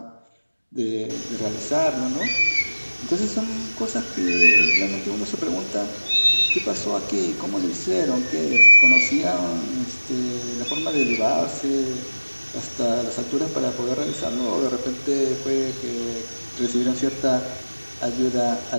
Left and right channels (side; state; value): both; inverted; correlation -1.00